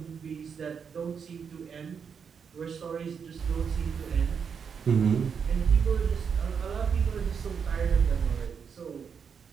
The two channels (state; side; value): quieter; left; 6.6 dB